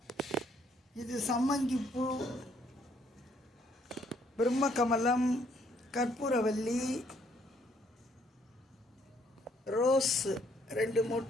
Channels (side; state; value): both; normal; correlation 0.67